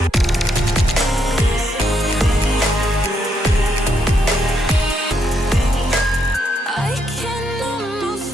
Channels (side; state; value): both; normal; correlation 0.77